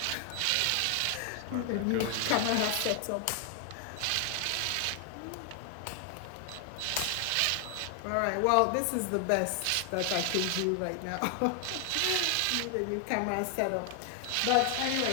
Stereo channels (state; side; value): different; both; correlation 0.00